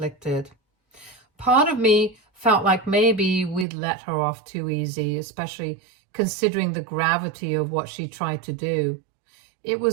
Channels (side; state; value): left; drops out; at 3.7 s